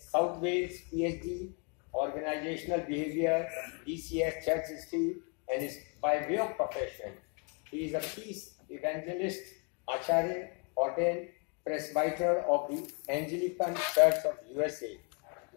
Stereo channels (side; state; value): right; quieter; 35.5 dB